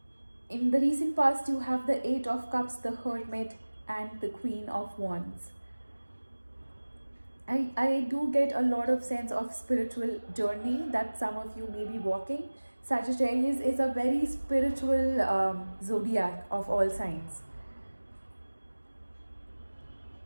In the recent past, you have the Eight of Cups, the Hermit, and the Queen of Wands. I do get a lot of sense of spiritual journey that some of you may be walking. Sagittarius is a very spiritual zodiac of all signs.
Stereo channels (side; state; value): both; inverted; correlation -1.00